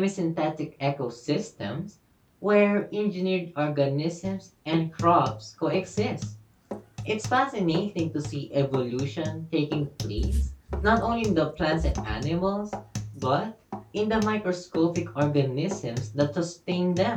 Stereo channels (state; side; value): identical; both; correlation 1.00